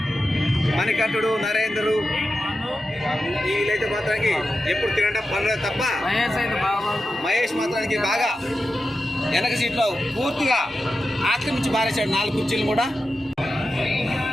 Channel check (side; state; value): both; normal; correlation 0.91